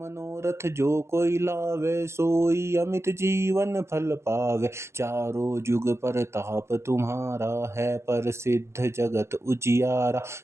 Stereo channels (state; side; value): late; left; 0.13 ms